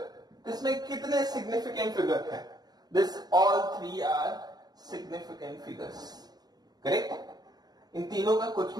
इसमें कितने significant figure हैं? This all three are significant figures, correct? इन तीनों का कुछ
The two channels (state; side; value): late; left; 0.19 ms